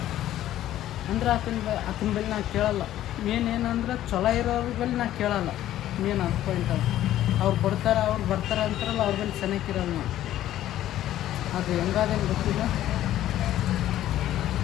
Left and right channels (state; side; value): quieter; right; 13.0 dB